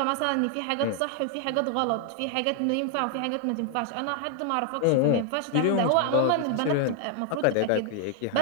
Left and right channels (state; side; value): different; both; correlation 0.00